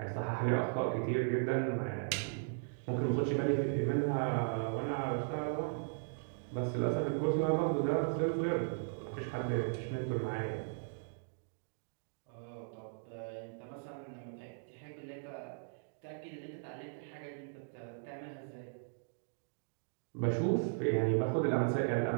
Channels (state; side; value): silent; left; digital silence